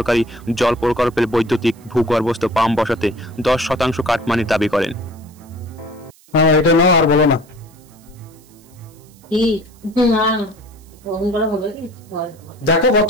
জল প্রকল্পের বৈদ্যুতিক ভূগর্ভস্থ পাম্প বসাতে ১০% কাটমানির দাবি করেন। এটা নাও আর বলো না। দেখো কত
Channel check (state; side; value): noise; right; hiss, 28 dB below the sound